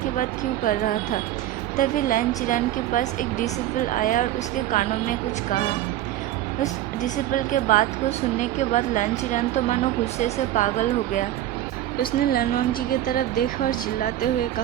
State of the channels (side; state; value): left; quieter; 13.4 dB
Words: बात क्यों कर रहा था। तभी लैन चिरान के पास एक डिसिपल आया और उसके कानों में कुछ कहा। उस डिसिपल के बात को सुनने के बाद लैन चिरान तो मानो गुस्से से पागल हो गया। उसने लानवांगजी की तरफ देखा और चिल्लाते हुए